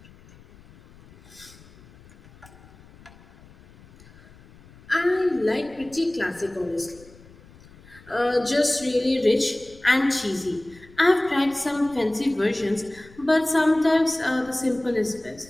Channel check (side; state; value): left; noise; rumble, 24 dB below the sound